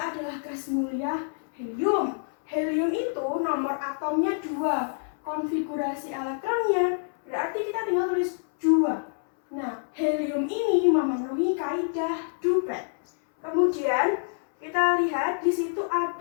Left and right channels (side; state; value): right; silent; 60 dB below the other